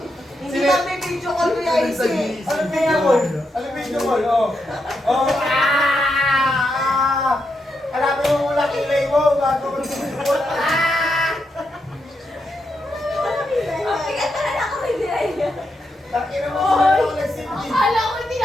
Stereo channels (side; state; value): both; normal; correlation 0.83